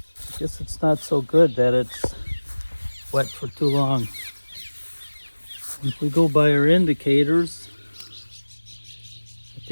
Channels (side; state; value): both; inverted; correlation -1.00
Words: I guess it's not so good that it's wet for too long. If we go by our indicators, I